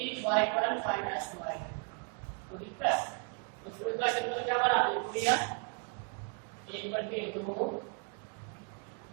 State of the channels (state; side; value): quieter; left; 39.8 dB